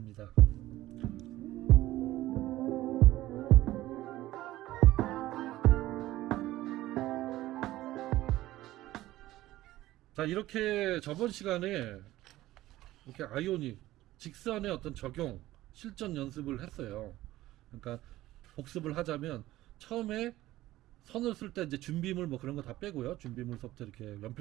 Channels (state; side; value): quieter; left; 16.0 dB